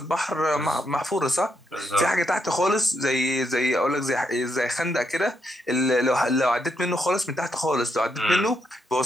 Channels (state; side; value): normal; both; correlation 0.79